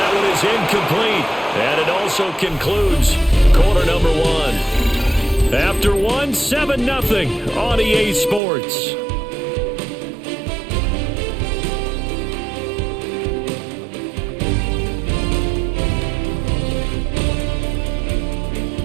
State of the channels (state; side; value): drops out; left; at 8.4 s